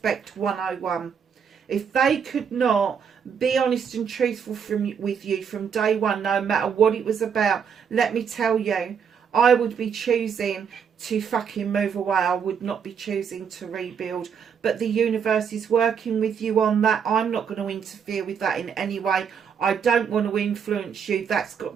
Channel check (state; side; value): quieter; left; 7.1 dB